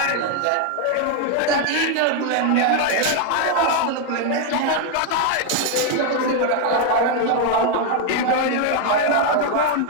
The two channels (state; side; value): different; both; correlation 0.01